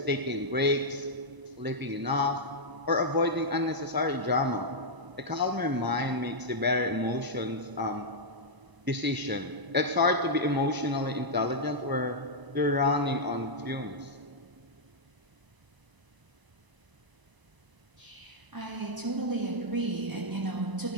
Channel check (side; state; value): left; late; 1.0 ms